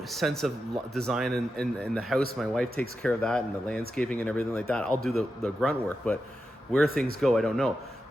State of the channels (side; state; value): both; normal; correlation 0.89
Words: sense of design in the house. My wife takes care of that and the landscaping and everything like that. I'll do the grunt work, but where things go, I don't know.